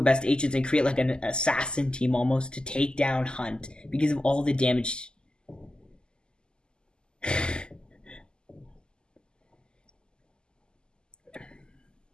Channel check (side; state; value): right; late; 0.047 ms